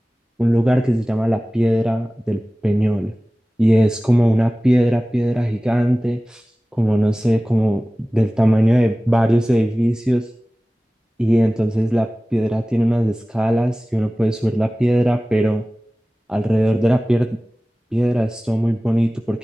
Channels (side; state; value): both; normal; correlation 0.98